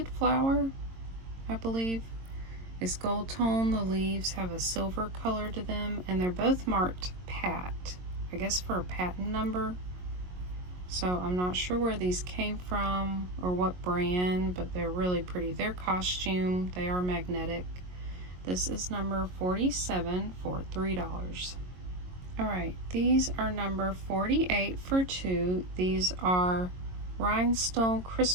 flower, I believe. It's gold tone. The leaves have a silver color to them, and they're both marked Pat, I guess for a patent number. So I'm not sure where these came from or what brand, but they're really pretty. They're costume. They are magnetic. This is number 47 for $3. All right, these are number 48 for 2. These are rhinestone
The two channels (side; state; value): left; late; 22 ms